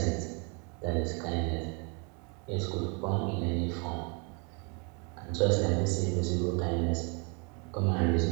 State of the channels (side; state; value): left; quieter; 34.3 dB